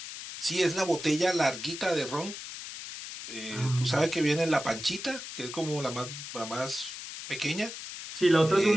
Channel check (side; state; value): left; noise; hiss, 10 dB below the sound